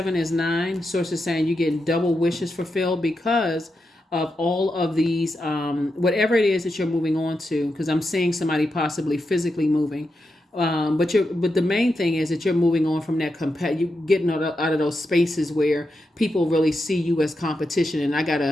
is 9. Source is saying you're getting double wishes fulfilled because of all of these, whatever it is that you're moving on to. Because I'm seeing somebody possibly physically moving. But the main thing is that you're moving on from that you getting out of those spaces where people really see you as competition, and I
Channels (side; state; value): both; normal; correlation 0.87